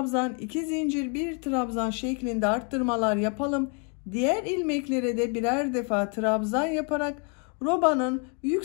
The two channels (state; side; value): quieter; right; 37.9 dB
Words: 2 zincir, bir trabzan şeklinde arttırmalar yapalım. Diğer ilmeklere de birer defa trabzan yaparak robanın